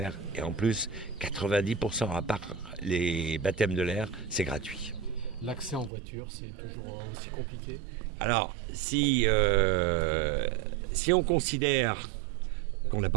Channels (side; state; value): left; drops out; at 5.9 s